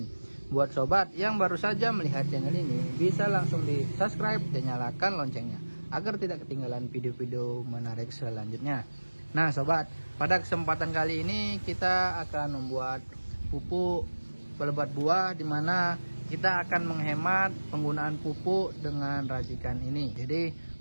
Buat sobat yang baru saja melihat channel ini, bisa langsung di subscribe dan nyalakan loncengnya agar tidak ketinggalan video-video menarik selanjutnya. Nah sobat, pada kesempatan kali ini kita akan membuat pupuk pelebat buah, dimana kita akan menghemat penggunaan pupuk dengan racikan ini. Jadi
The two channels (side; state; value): both; inverted; correlation -1.00